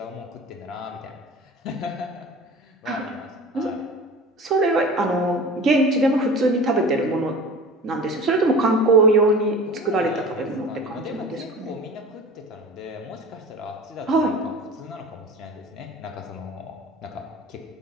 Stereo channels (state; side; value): normal; both; correlation 0.37